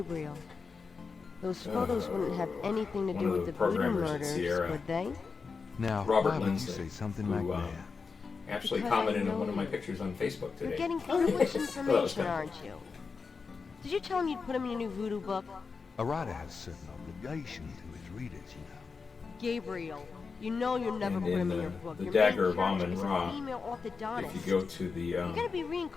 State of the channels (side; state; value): right; quieter; 4.9 dB